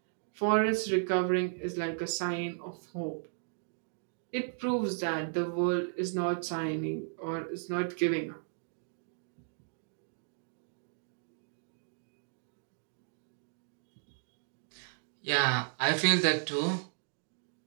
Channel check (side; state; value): left; silent; digital silence